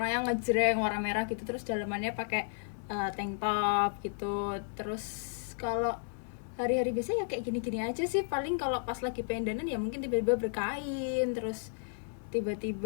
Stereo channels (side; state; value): right; silent; digital silence